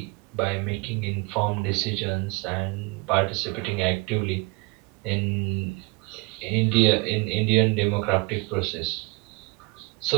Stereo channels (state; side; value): quieter; left; 26.0 dB